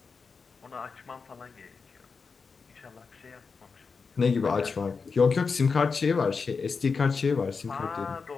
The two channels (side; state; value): right; quieter; 5.0 dB